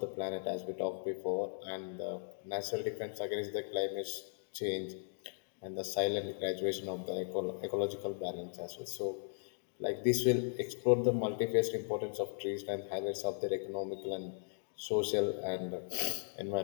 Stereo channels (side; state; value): right; silent; digital silence